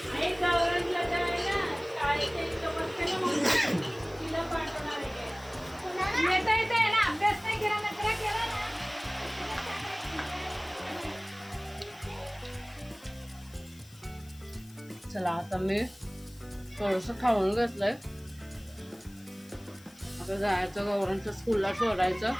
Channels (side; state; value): left; noise; hiss, 24 dB below the sound